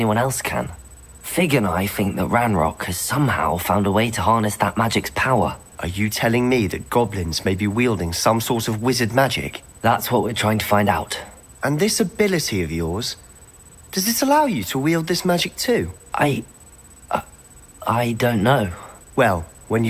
else can. Fig and I think that Ranrock has somehow found a way to harness that magic's power. Are you telling me that goblins may be wielding some sort of wizard magic? That's what we're trying to find out. And this ability of yours, does it allow you to wield this magic too? I don't know. Well, when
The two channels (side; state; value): both; identical; correlation 1.00